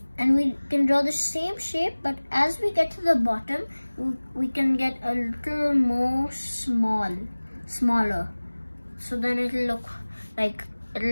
we can draw the same shape, but as we get to the bottom we can get a little more smaller, so then it'll look like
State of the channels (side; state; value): both; inverted; correlation -1.00